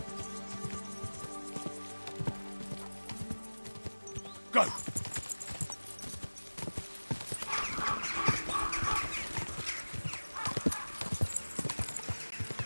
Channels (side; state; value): both; inverted; correlation -1.00